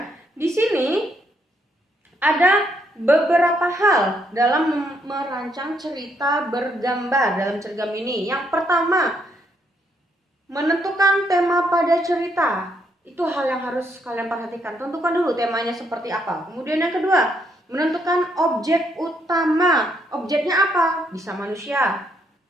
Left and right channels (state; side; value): normal; both; correlation 0.74